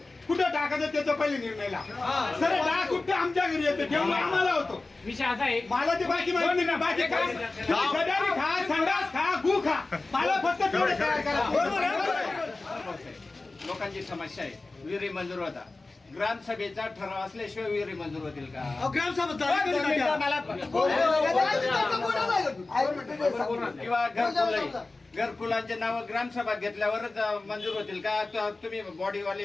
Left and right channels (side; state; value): right; quieter; 3.3 dB